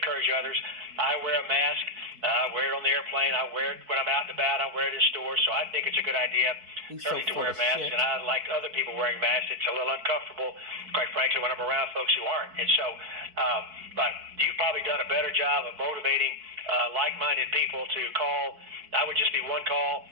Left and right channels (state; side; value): late; left; 4.5 ms